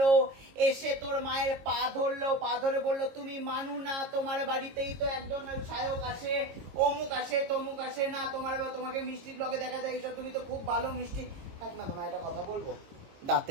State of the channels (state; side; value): late; left; 22 ms